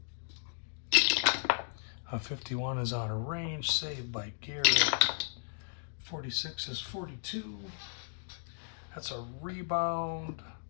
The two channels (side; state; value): right; silent; digital silence